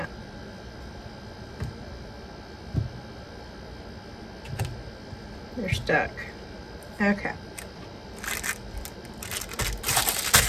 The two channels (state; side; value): identical; both; correlation 1.00